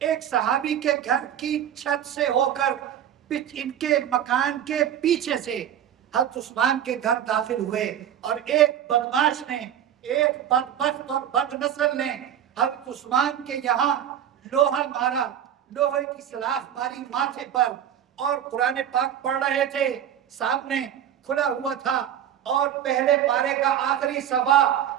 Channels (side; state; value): left; quieter; 10.0 dB